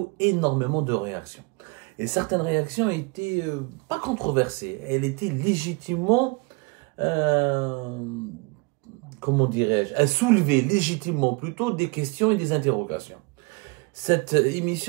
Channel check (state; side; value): quieter; left; 28.4 dB